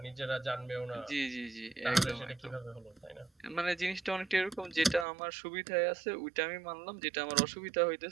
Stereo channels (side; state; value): left; drops out; at 5.1 s